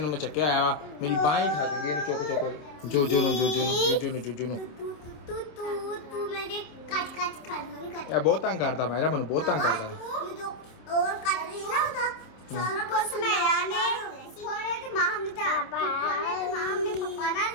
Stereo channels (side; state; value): right; late; 27 ms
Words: ਨੂੰ ਮੈਂ ਚੱਕਿਆ ਆਇਆ ਵਾ ਮੇਰੀ ਬਾਂਹ ਹੀ ਖਾ ਗਈ ਇਹਨੂੰ ਚੁੱਕ ਚੁੱਕ ਜੋਜੋ ਨੂੰ तू मेरे कट खा लो नहीं कट। ਇਹ ਬਹੁਤ ਤੰਗ ਕਰਦਾ ਮੇਰਾ ਮੈਨੂੰ ਬਹੁਤ ਤੰਗ ਕਰਦਾ। और कट रही ना होता कुछ मेरा ने थोड़े ते मां हमने था थोड़े ते मां हमने पापा ना